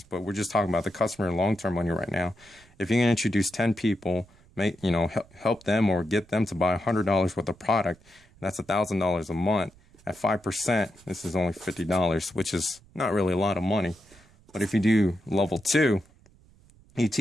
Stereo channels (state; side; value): noise; right; rumble, 28 dB below the sound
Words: but we're just talking about the customer and long-term money right now. If you can introduce 10 people, help them or get them to buy $100 worth of product, that's $1,000 a month. At 5%, this is only $50, which is not really a lot of money. But if you do level 2, you